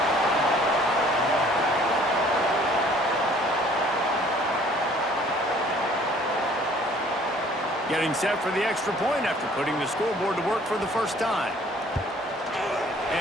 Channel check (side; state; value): both; normal; correlation 0.56